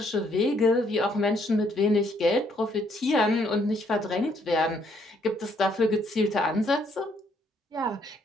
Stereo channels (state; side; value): normal; both; correlation 0.69